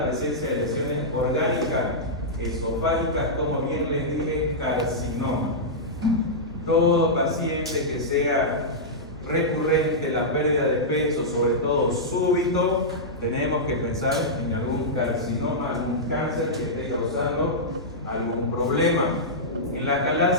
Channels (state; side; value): normal; both; correlation -0.11